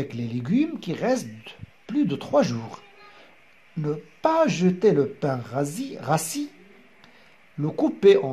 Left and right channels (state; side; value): identical; both; correlation 1.00